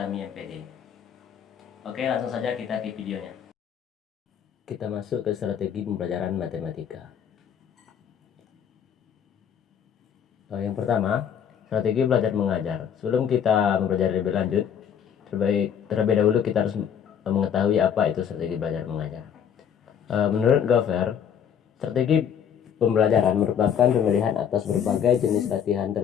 MPD. Oke, langsung saja kita ke videonya. Kita masuk ke strategi pembelajaran matematika. Yang pertama, strategi belajar mengajar. Sebelum kita mempelajari lebih lanjut, terlebih dahulu kita harus mengetahui apa itu strategi belajar mengajar. Menurut Gover, strategi pembelajaran merupakan pemilihan atas berbagai jenis latihan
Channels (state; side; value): quieter; right; 8.3 dB